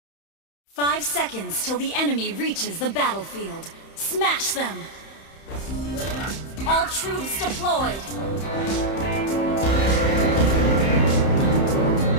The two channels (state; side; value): late; right; 31 ms